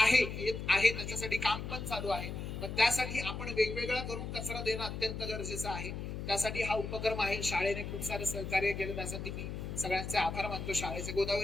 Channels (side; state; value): left; noise; hum, 6 dB below the sound